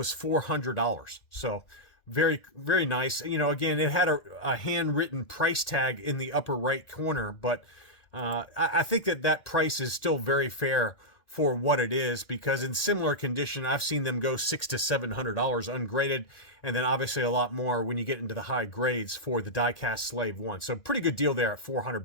$400. So very, very nice. You know, again, it had a handwritten price tag in the upper right corner, but I think that price is still very fair for what it is, because in similar condition, I've seen them go $600 to $700 ungraded, and then obviously a lot more when you get into the high grades for the die-cast Slave 1. So pretty good deal there at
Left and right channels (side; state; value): right; late; 1.8 ms